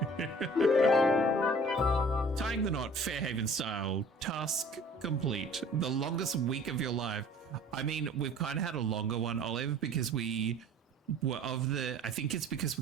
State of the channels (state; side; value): normal; both; correlation 0.48